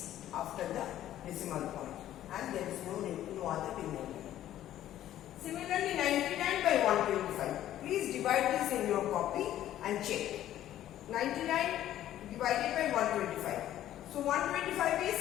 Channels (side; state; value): right; quieter; 12.5 dB